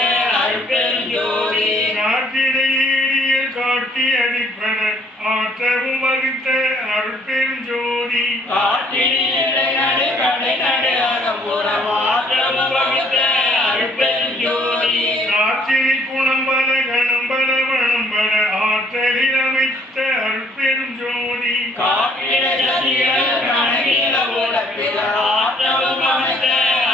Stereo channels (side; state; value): both; normal; correlation 0.62